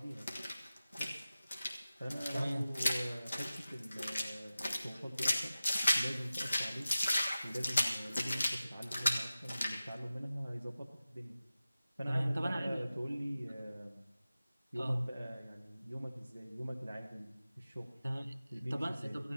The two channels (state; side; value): inverted; both; correlation -0.95